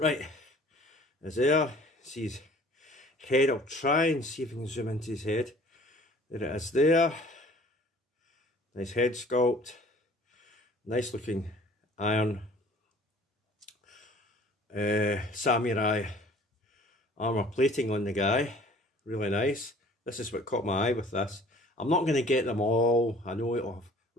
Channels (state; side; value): normal; both; correlation 0.51